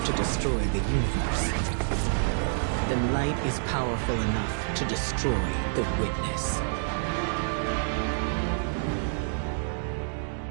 to destroy the universe, then light is powerful enough to destroy the witness.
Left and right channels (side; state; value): left; silent; digital silence